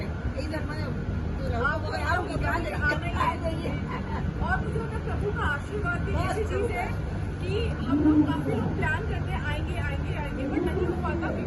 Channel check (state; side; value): identical; both; correlation 1.00